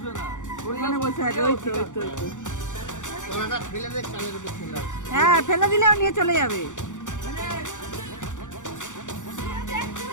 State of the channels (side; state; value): right; late; 0.86 ms